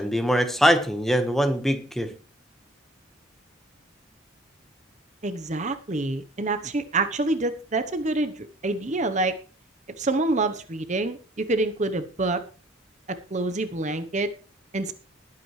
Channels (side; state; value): both; normal; correlation 0.58